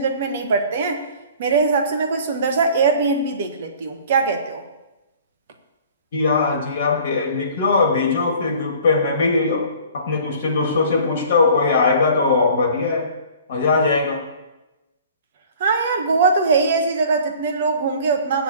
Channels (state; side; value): inverted; both; correlation -0.49